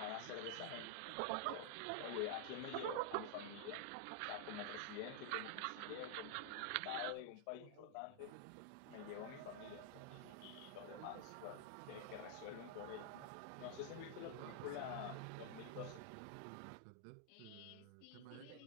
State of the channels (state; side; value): different; both; correlation 0.00